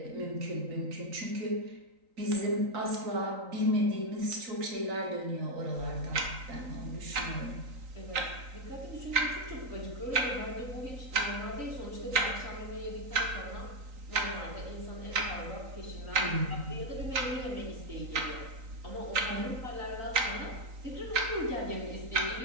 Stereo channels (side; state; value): left; late; 3.9 ms